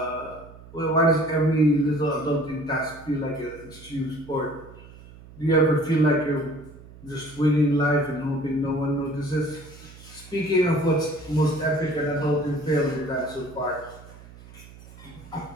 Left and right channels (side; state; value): right; noise; hum, 19 dB below the sound